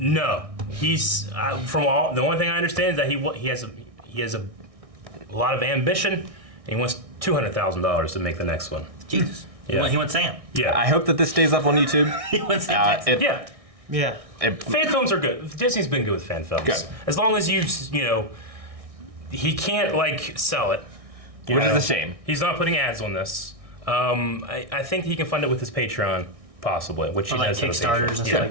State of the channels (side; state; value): left; late; 1.6 ms